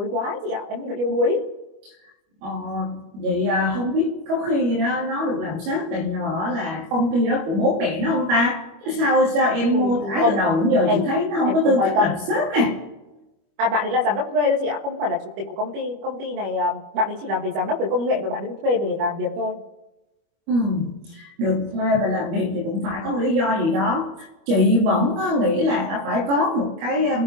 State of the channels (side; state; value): left; late; 25 ms